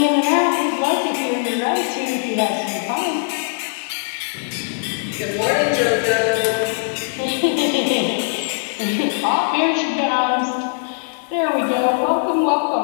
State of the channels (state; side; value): silent; right; 60 dB below the other